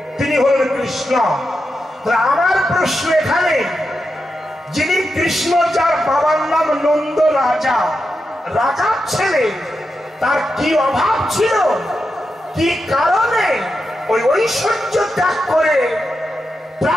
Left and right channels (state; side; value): normal; both; correlation 0.88